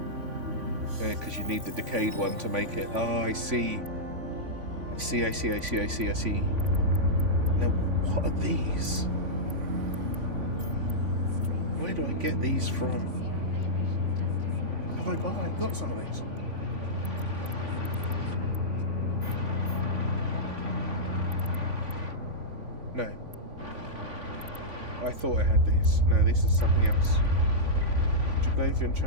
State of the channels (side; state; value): left; late; 3.5 ms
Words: Yeah, because you need the decayed one to make it. Oh, I see. I see. Now, what are these? Where do I get these from? Have I got? I've got some of these. No. I thought I had these. No, this is something else. Juglavian